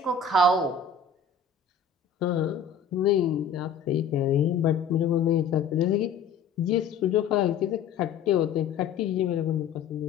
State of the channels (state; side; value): quieter; right; 6.1 dB